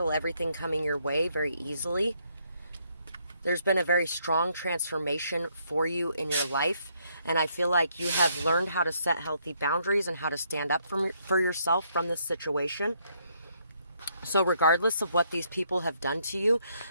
everything coming your way very easily. There's been a very strong transformation for you in your life, and I feel like you have learned how to set healthy boundaries and how to stand up for yourself from this situation. So regardless of what these people have done to you,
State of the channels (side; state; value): both; inverted; correlation -0.72